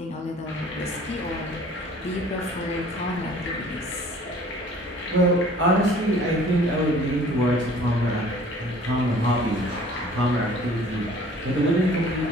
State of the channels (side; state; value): both; normal; correlation 0.51